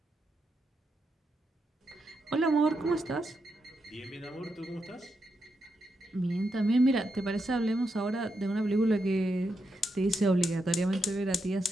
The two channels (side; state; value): both; normal; correlation 0.84